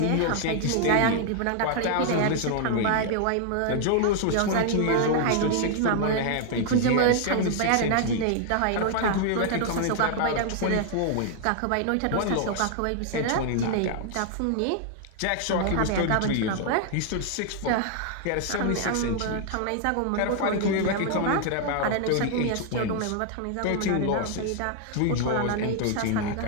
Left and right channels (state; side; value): different; both; correlation 0.00